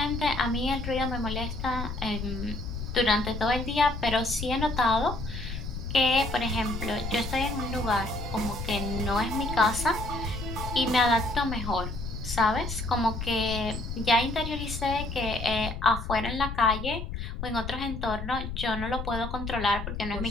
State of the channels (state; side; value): noise; left; rumble, 6 dB below the sound